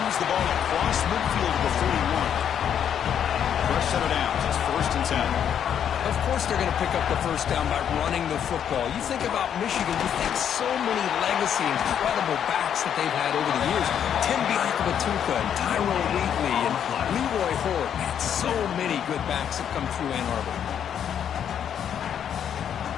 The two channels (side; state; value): right; quieter; 8.9 dB